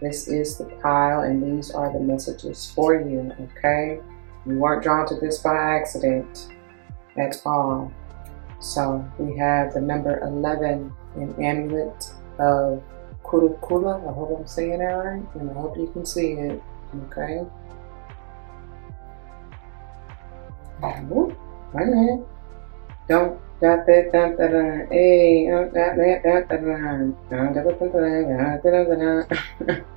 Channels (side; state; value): left; silent; 59 dB below the other